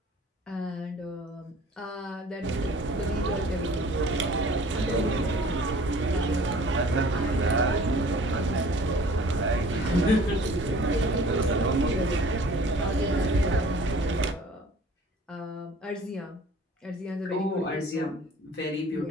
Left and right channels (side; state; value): both; normal; correlation 0.49